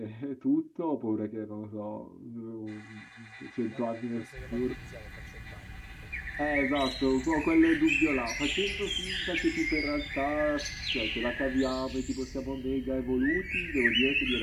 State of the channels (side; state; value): both; identical; correlation 1.00